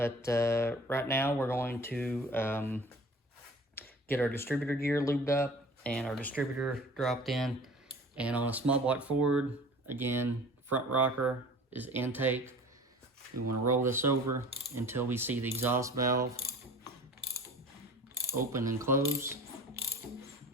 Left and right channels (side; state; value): both; normal; correlation 0.43